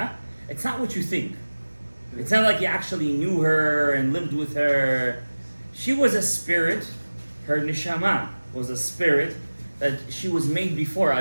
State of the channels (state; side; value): inverted; both; correlation -1.00